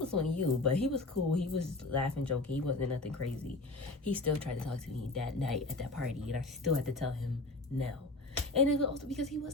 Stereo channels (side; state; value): right; quieter; 3.1 dB